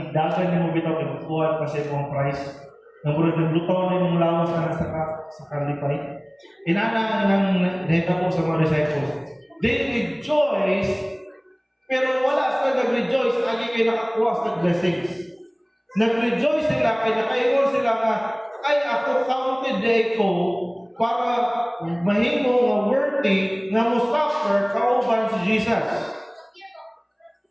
igdagan ni mo bitaw kinukuha kasi mong price. Nang burag naglutaw na yung lawas na sa kalipay. Inana ng nahitabo sa mga disciples. They rejoice, pero wala sila nag-rejoice lagi kayo nakakuha sa blessings. Nag-rejoice sila, kaya nakaingon sila nga, ay ako counted day ko para mahimo nga worthy nga mo suffer kauban si Jesus.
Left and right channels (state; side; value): identical; both; correlation 1.00